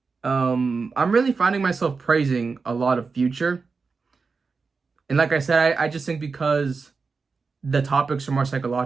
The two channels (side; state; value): left; quieter; 4.7 dB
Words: I'm really finding myself praising a lot of Future. And like I said, I just think because the topics are more